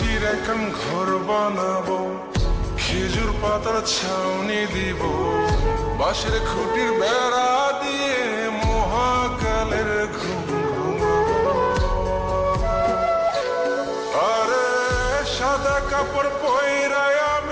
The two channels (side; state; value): both; identical; correlation 1.00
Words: এখন ঘর বানাবো, খেজুর পাতার ছাউনি দিব, বাঁশের খুঁটির বেড়া দিয়ে মহাকালের ঘুম ঘুমাবো। আরে সাদা কাপড় পয়রায়